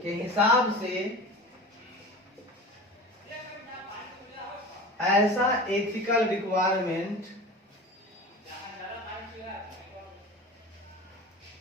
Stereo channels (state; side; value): normal; both; correlation 0.34